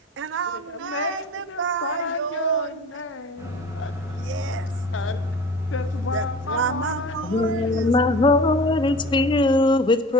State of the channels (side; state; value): both; normal; correlation 0.39